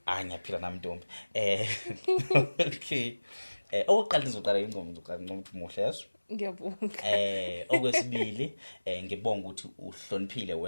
Ngiyaphila nami Ntombi. Okay. Oqala nizoqala ingoma ukuthi muhle yeso. Ngiyabonga. Okwesibili ngibonga ukuthi uhloniphile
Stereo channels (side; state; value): both; inverted; correlation -1.00